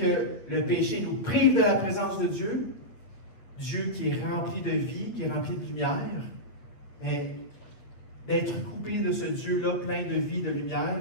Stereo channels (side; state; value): right; late; 8.5 ms